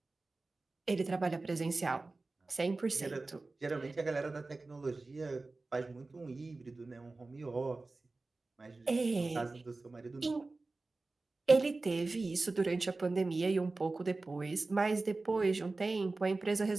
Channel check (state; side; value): quieter; left; 3.4 dB